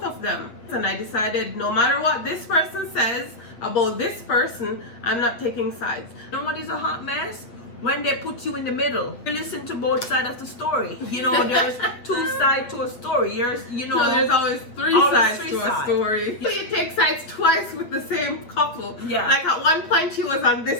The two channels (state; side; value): late; right; 8.3 ms